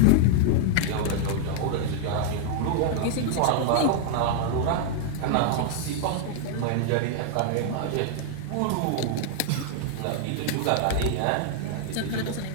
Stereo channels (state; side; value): different; both; correlation -0.01